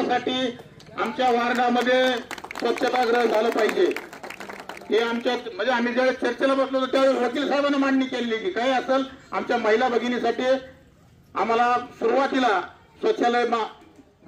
आमच्या वार्डामध्ये स्वच्छतागृह झालं पाहिजे। हे आमच्या म्हणजे आम्ही ज्यावेळेस चर्चेला बसलो होतो त्यावेळेस वकील साहेबांनी मांडणी केली की काय असेल आमच्या महिला भगिनीसाठी आम्हाला सुरुवातीला शौचालय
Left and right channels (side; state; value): both; identical; correlation 1.00